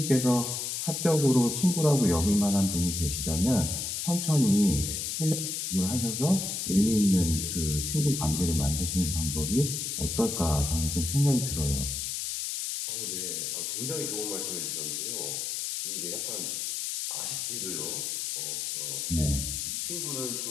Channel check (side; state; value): left; noise; hiss, 3 dB below the sound